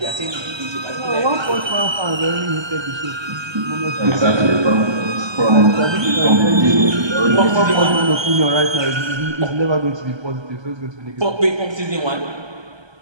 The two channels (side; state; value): left; late; 1.3 ms